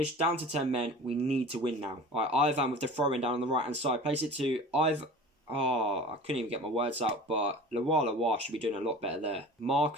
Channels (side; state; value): both; normal; correlation 0.39